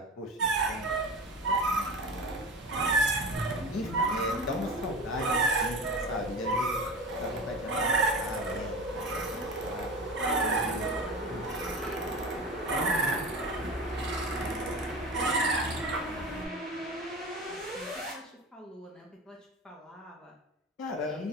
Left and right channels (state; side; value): normal; both; correlation 0.30